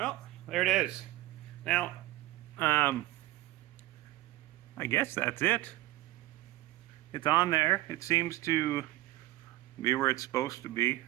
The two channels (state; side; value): quieter; left; 17.2 dB